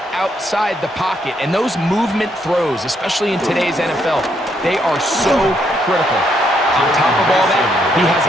outside the pocket. And those movement throws, especially in today's NFL, they are so critical. On top of all that, he has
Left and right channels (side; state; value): both; normal; correlation 0.74